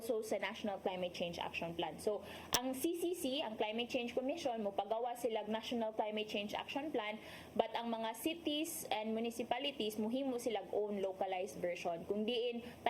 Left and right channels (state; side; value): identical; both; correlation 1.00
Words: sa National Climate Change Action Plan. So, ang CCC, ang Climate Change Commission, mupagawa silang National Climate Change Action Plan, but ang mga cities and municipalities, muhimo silang own localized version. Kung diin,